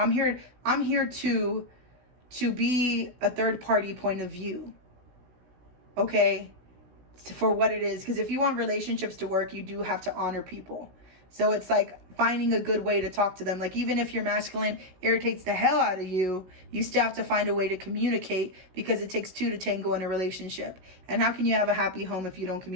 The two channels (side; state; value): left; late; 16 ms